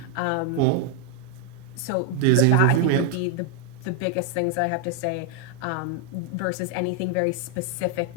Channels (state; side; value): different; both; correlation 0.00